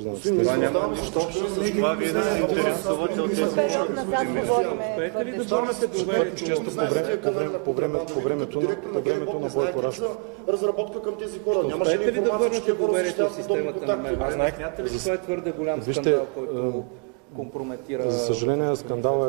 с тези. Това няма нищо общо с това, вие да се Успеете ли да върнете доверието? Често знаете тия канали на контрабанда, вие като директор на ГРБОП не знаете ли за разработка към тези хора? Успеете ли да върнете доверието в системата на МВР? Смятате ли, че това е твърде голям скандал, който компрометира... За съжаление,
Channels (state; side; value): quieter; left; 37.7 dB